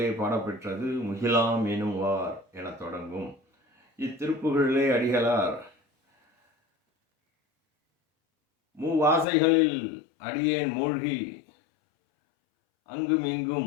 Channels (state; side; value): drops out; right; at 9.2 s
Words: பாடப்பெற்றது. முகிலாம் எனும் வார் என தொடங்கும் இத்திருப்புகழிலே அடிகளார் மூவாசைகளில் அடியேன் மூழ்கி அங்கும்